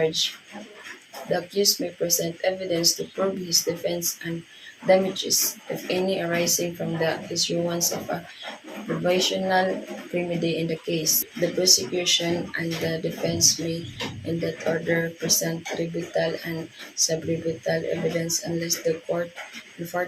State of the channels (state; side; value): identical; both; correlation 1.00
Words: The accused may present evidence to prove his defense and damages, if any, arising from the issuance of a provisional remedy in the case. The prosecution and the defense may, in that order, present rebuttal and sub-rebuttal evidence unless the court, in